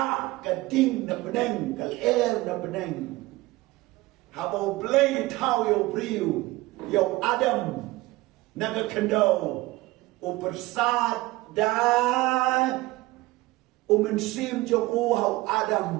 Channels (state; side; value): quieter; left; 19.7 dB